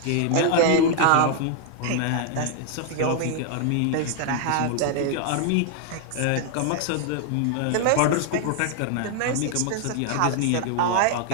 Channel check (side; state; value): both; different; correlation 0.00